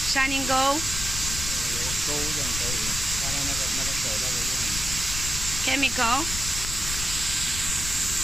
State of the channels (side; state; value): left; noise; rumble, 6 dB below the sound